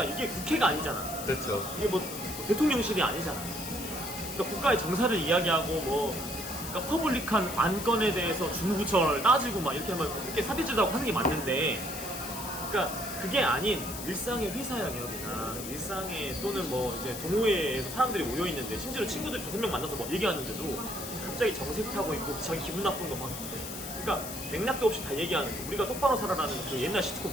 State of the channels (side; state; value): left; noise; hiss, 8 dB below the sound